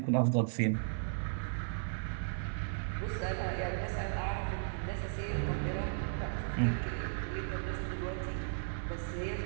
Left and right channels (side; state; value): left; silent; 54 dB below the other